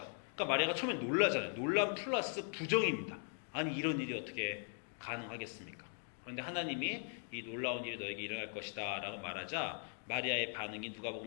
그러니까 마리아가 처음에 놀라잖아요. 놀람 플러스 부정입니다. 아니 이런 일이 어떻게 가능하겠습니까? 그런데 하나님이 이 놀라운 일이 너에게 일어날 것이다 라고 말하자 마리아의 반응이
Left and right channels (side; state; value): right; silent; 51 dB below the other